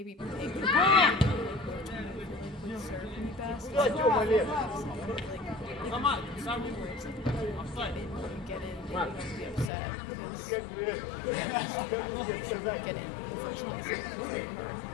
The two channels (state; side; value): drops out; right; at 9.7 s